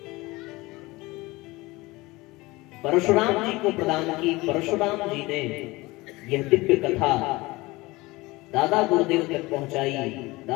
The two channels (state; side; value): quieter; right; 21.6 dB